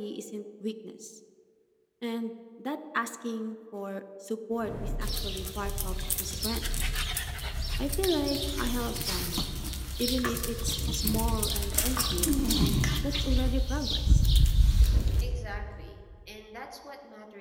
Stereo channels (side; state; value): both; identical; correlation 1.00